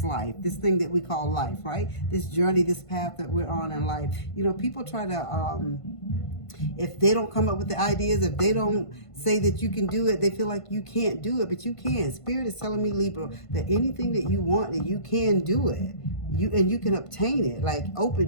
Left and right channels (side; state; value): right; late; 1.5 ms